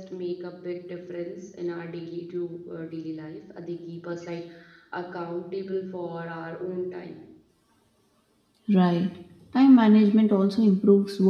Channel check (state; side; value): identical; both; correlation 1.00